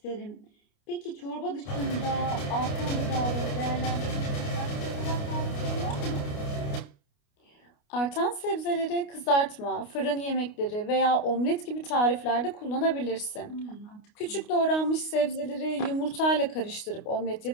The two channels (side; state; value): right; late; 29 ms